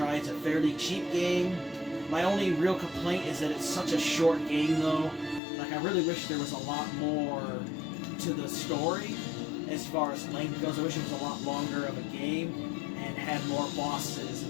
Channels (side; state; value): right; drops out; at 5.4 s